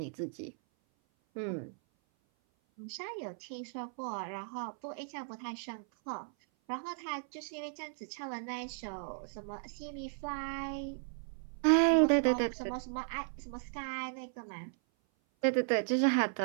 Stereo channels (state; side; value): silent; left; 54 dB below the other